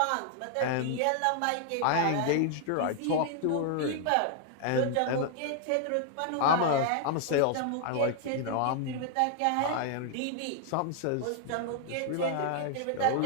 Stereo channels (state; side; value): different; both; correlation 0.00